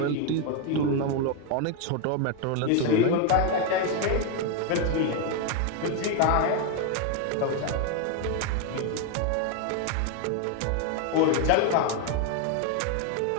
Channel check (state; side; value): different; both; correlation 0.01